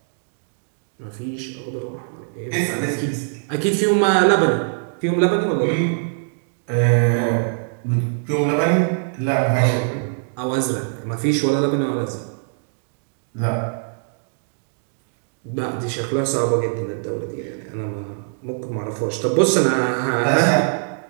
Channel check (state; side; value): silent; left; digital silence